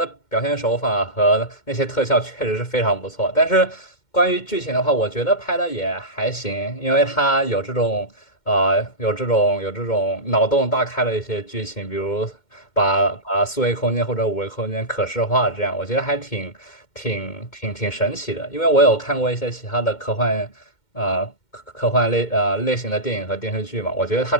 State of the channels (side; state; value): right; late; 2.1 ms